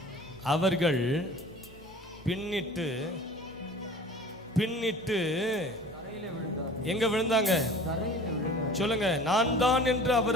அவர்கள் பின்னிட்டு எங்க விழுந்தாங்க சொல்லுங்க. நான் தான் என்று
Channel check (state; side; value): normal; both; correlation 0.44